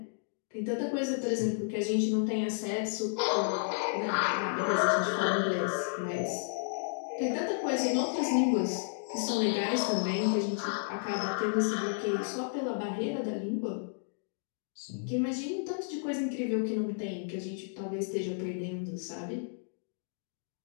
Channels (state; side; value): silent; right; digital silence